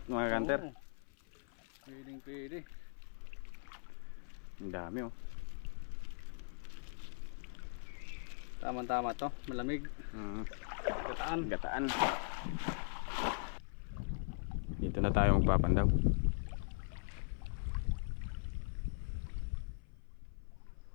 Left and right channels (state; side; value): silent; right; 51 dB below the other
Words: mga kanter. Oo. Pwedeng pwede. Ang dami oh. Tama-tama to, malamig. Gataan. Gataan. Dito na tayo magpapandaw.